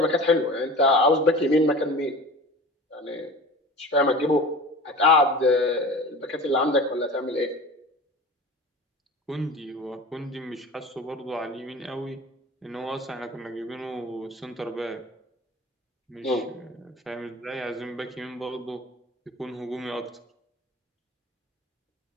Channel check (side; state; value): both; normal; correlation 0.37